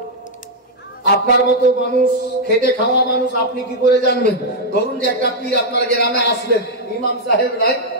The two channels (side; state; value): both; normal; correlation -0.02